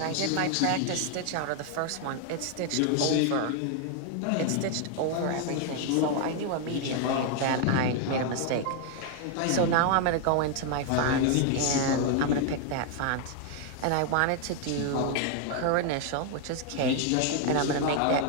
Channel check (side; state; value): both; different; correlation 0.00